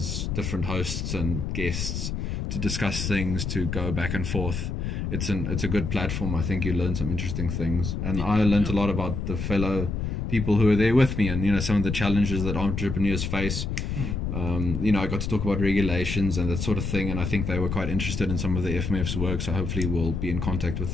different hosts and guests to discuss things, to go back and forth. It's a good platform. I think you learn some interesting things, and I learned a lot about the fellow people who are there with me, and some of the challenges that entrepreneurs face. I got to talk about regulations and that sort of thing, and I think they were quite interested in some of the FMF's work, so hopefully we'll be in contact with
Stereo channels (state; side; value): noise; left; rumble, 3 dB below the sound